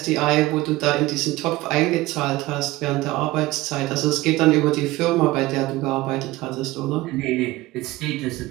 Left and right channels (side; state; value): left; quieter; 18.9 dB